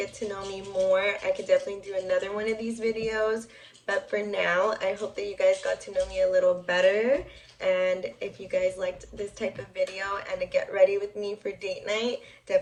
to know me more, I could definitely do another one of these videos. But for now, I hope that you guys got to know me a little better. And if you guys liked this type of video and to get ready with me for date night,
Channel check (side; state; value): both; identical; correlation 1.00